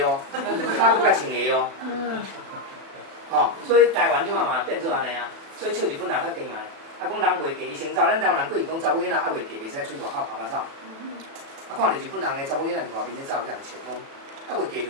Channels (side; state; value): left; late; 36 ms